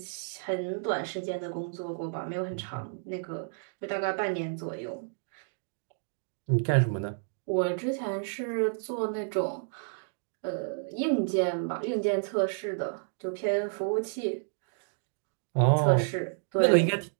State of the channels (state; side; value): silent; left; digital silence